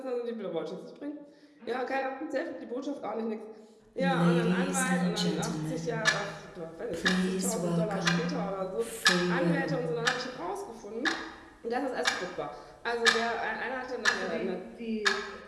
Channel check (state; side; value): identical; both; correlation 1.00